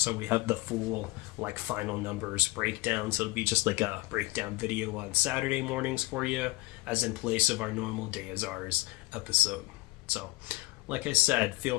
we have the full final numbers breakdown. So it'll be just like a breakdown video on Saturday mornings for you, as in place of our normal Day Is Ours episode. So, like I said, feel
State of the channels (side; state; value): right; quieter; 21.0 dB